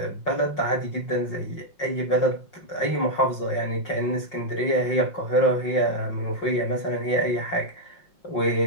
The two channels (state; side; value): late; right; 5.5 ms